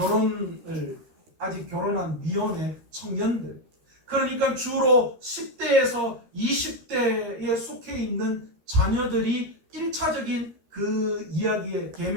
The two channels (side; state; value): left; late; 13 ms